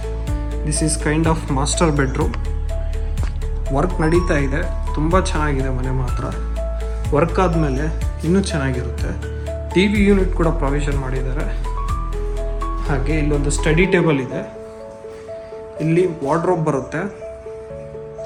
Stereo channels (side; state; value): both; identical; correlation 1.00